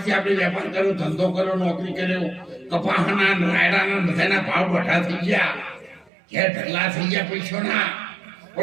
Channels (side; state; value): left; drops out; at 6.1 s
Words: આપણે વેપાર કર્યો, ધંધો કર્યો, નોકરી કર્યો, કપાસના રાયડાના બધાના ભાવ બઢા થઈ ગયા, ઘેર ઢગલા થઈ ગયા પૈસાના.